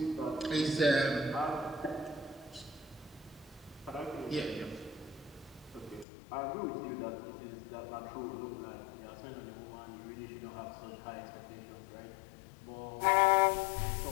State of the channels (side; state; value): right; drops out; at 6.1 s